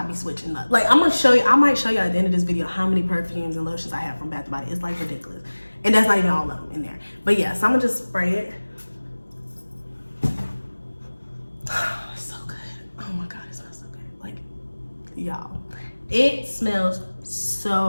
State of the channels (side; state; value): both; inverted; correlation -1.00